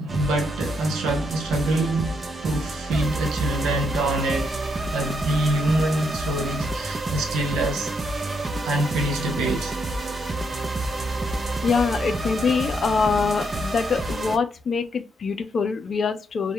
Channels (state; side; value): normal; both; correlation 0.77